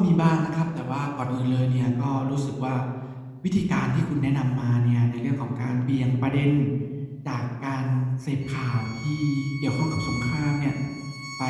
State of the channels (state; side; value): identical; both; correlation 1.00